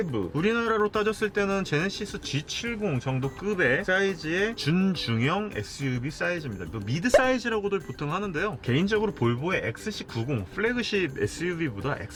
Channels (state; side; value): identical; both; correlation 1.00